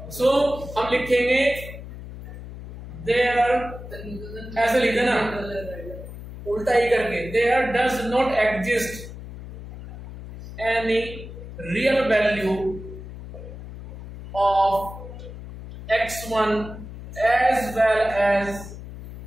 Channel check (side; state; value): left; noise; hum, 12 dB below the sound